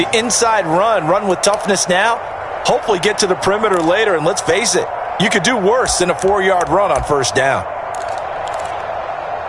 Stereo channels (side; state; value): both; identical; correlation 1.00